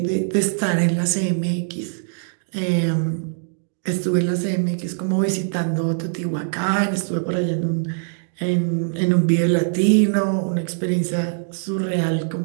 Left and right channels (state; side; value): silent; left; digital silence